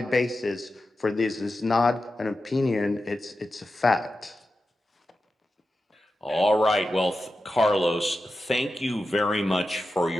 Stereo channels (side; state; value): both; normal; correlation 0.91